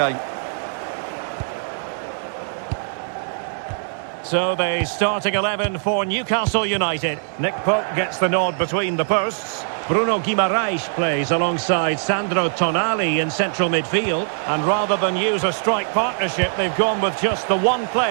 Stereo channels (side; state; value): left; silent; digital silence